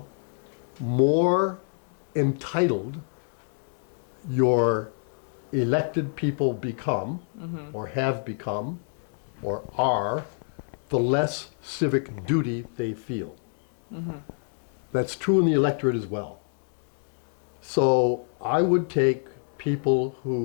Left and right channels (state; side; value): silent; right; digital silence